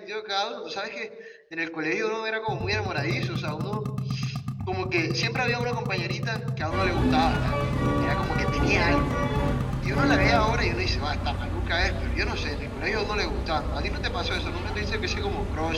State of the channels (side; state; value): both; identical; correlation 1.00